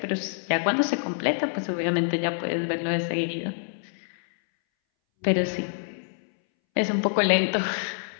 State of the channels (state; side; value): silent; right; 61 dB below the other